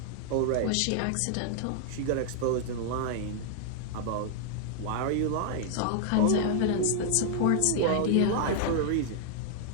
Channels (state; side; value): different; both; correlation 0.00